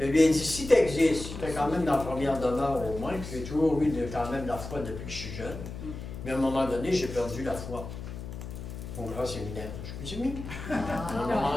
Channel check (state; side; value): noise; left; hum, 10 dB below the sound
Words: lui ai dit, si tu existes, j'étais quand même dans la première demeure au moins, puis j'ai toujours eu quand même la foi depuis que je suis jeune. Mais à un moment donné, j'ai perdu la foi. Au grand séminaire, je me suis mis. À un